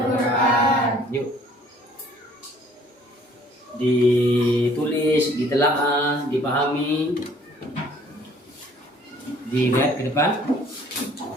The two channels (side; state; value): both; normal; correlation 0.57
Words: Yuk, ditulis, ditelaah, dipahami, dilihat ke depan.